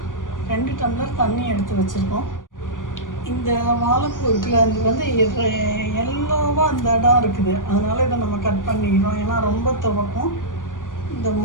2 டம்ளர் தண்ணி எடுத்து வச்சுருக்கோம். இந்த வாழைப்பூ இருக்குல்ல, அது வந்து எல்லோவாக அந்த இடம் இருக்குது, அதனால் இதை நம்ம கட் பண்ணிக்கிறோம். ஏன்னா ரொம்ப துவக்கும், இந்த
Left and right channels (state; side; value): late; right; 0.88 ms